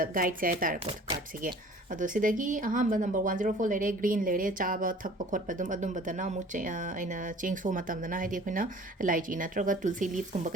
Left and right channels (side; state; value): both; normal; correlation 0.48